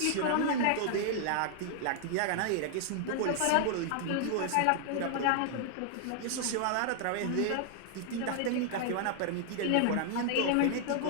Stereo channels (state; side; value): different; both; correlation 0.00